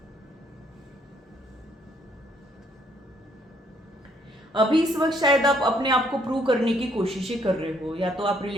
अभी इस वक्त शायद आप अपने आप को प्रूव करने की कोशिशें कर रहे हो, या तो आप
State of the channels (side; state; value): both; normal; correlation 0.68